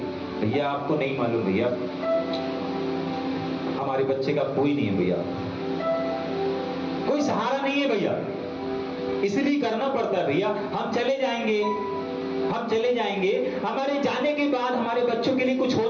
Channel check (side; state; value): both; identical; correlation 1.00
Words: भैया आपको नहीं मालूम, भैया हमारे बच्चे का कोई नहीं है, भैया कोई सहारा नहीं है, भैया इसलिए करना पड़ता है। भैया हम चले जाएंगे, हमारे जाने के बाद हमारे बच्चों के लिए कुछ